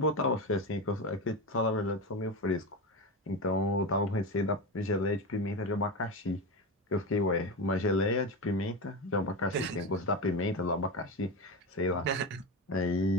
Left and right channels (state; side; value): normal; both; correlation 0.18